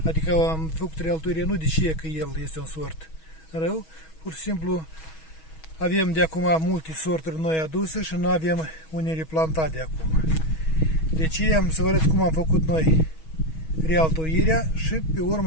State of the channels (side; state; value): right; late; 6.3 ms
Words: Adică am făcut realtoirea nu de ce că el este un sort rău, pur și simplu avem de acum multe sorturi noi aduse și nu avem unele plantate de acum. Deci am să vă arăt cum am făcut noi realtoirea și pe